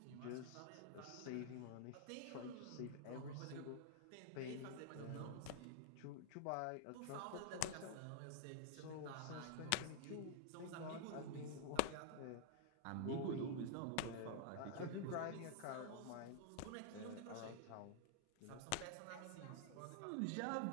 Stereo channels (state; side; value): different; both; correlation -0.01